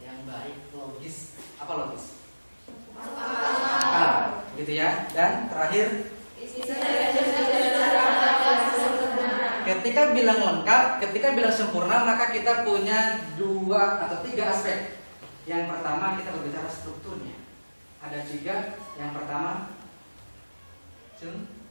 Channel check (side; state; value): both; inverted; correlation -1.00